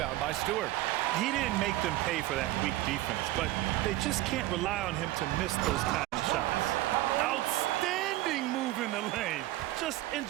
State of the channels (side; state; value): left; quieter; 16.5 dB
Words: by Stewart. He didn't make them pay for that weak defense, but they just can't rely on him to miss those kind of shots. Outstanding move in the lane. Just